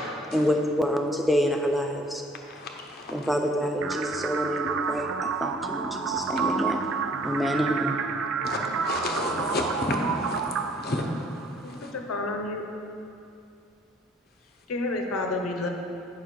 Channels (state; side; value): normal; both; correlation 0.58